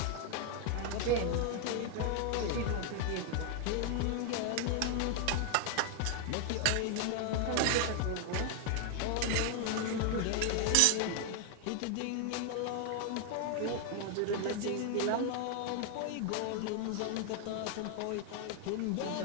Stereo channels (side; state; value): both; different; correlation 0.00